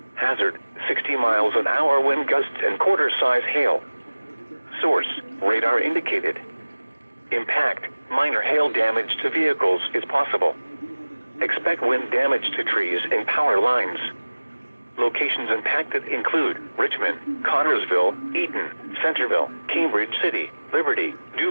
Hazard, 60 miles an hour wind gusts and quarter-size hail. Source, radar indicated. Impact, minor hail damage to vehicles is possible. Expect wind damage to trees and power lines. Locations impacted include Richmond, Connorsville, Eaton, Centerville, Cambridge City, Liberty, New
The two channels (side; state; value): both; inverted; correlation -1.00